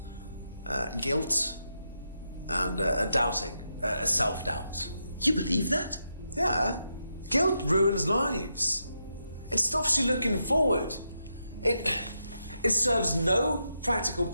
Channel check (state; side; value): inverted; both; correlation -0.84